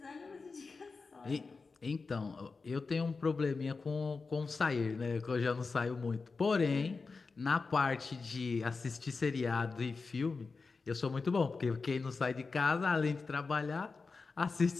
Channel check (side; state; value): right; quieter; 4.4 dB